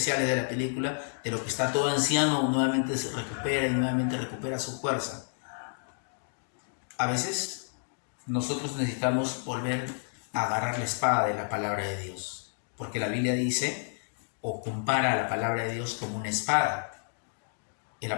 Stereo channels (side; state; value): right; silent; digital silence